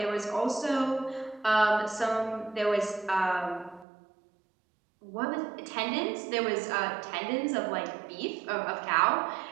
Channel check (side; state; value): left; drops out; at 3.9 s